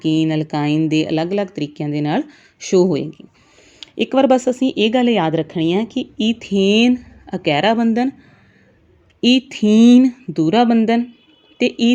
ਅਲਕਾਈਨ ਦੇ ਅਲੱਗ-ਅਲੱਗ ਤਰੀਕਿਆਂ ਦੇ ਨਾਲ ਸ਼ੋ ਹੋਏਗੀ। ਇੱਕ ਵਾਰ ਬਸ ਅਸੀਂ ਇਹ ਗੱਲ ਯਾਦ ਰੱਖਣੀ ਹੈ ਕਿ ਈਥੇਨ ਇਕਹਿਰਾ ਬੰਧਨ, ਈਥੀਨ ਦੂਹਰਾ ਬੰਧਨ, ਅਤੇ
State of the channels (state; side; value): identical; both; correlation 1.00